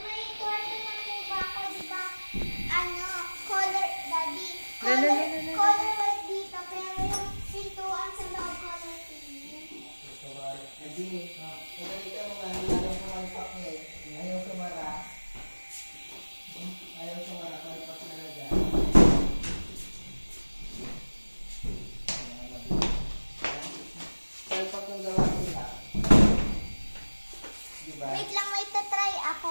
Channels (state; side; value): inverted; both; correlation -1.00